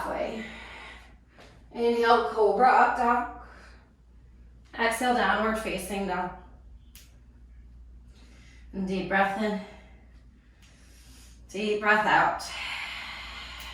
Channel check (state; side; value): identical; both; correlation 1.00